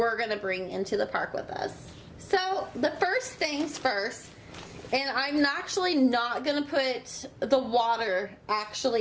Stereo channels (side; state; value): both; identical; correlation 1.00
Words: gonna bring into the park with us. So the first things first, and I'm actually not gonna put the water